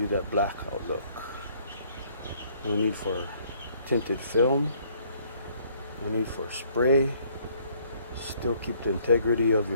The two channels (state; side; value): inverted; both; correlation -0.63